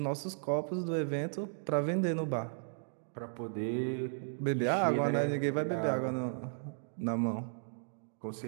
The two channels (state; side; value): silent; left; digital silence